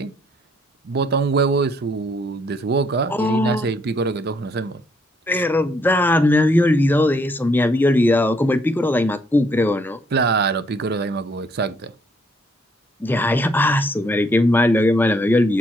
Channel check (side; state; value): both; normal; correlation 0.69